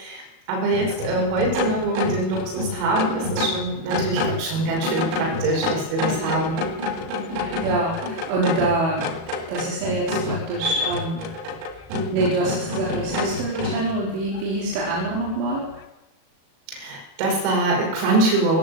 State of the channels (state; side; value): late; left; 37 ms